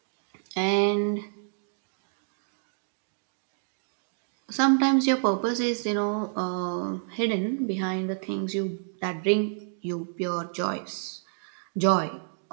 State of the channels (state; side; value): silent; left; digital silence